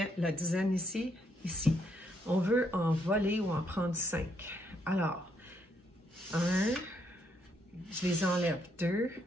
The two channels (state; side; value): normal; both; correlation 0.74